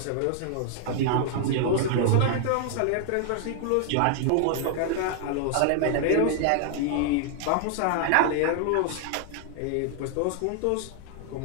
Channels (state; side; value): different; both; correlation 0.00